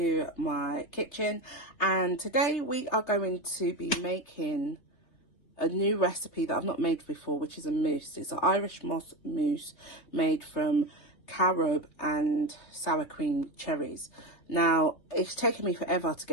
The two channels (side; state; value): right; late; 3.5 ms